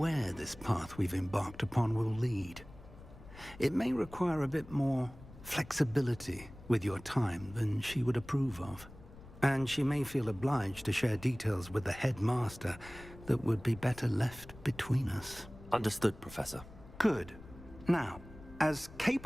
this path we've embarked upon will lead. It may require a bit more flexibility with your time than she would approve of. And she may feel obliged to share details with the headmaster that would be better left between us. Understood, Professor. Good. Now, as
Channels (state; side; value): noise; left; rumble, 18 dB below the sound